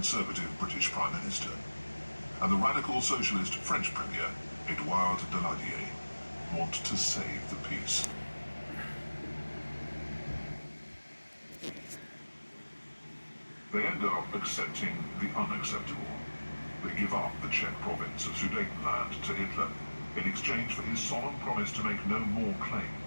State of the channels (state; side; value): inverted; both; correlation -1.00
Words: British Prime Minister, and the radical socialist French Premier, Edouard Daladier, want to save the peace. They end up accepting the unacceptable. They give up the Czech province of Sudetenland to Hitler in exchange for his solemn promise to make no more